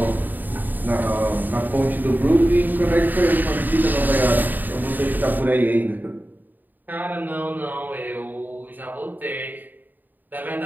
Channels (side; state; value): left; late; 0.088 ms